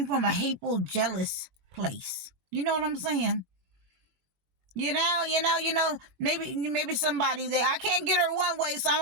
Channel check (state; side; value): late; left; 22 ms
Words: from a hateful, jealous place. You know what I'm saying? Maybe somebody there, I can't get her one way, so I'm